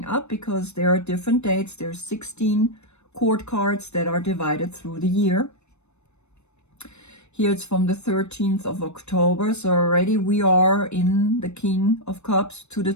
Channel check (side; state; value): right; late; 0.81 ms